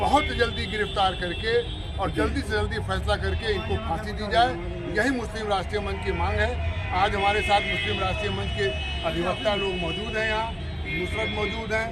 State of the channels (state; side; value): identical; both; correlation 1.00